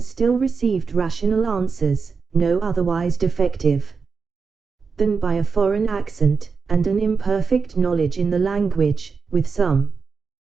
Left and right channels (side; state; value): left; quieter; 5.1 dB